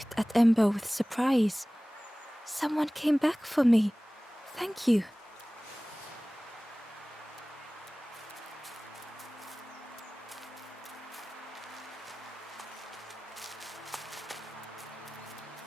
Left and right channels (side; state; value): both; normal; correlation 0.98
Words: at Ember with surprise. Someone came back for me. Thank you.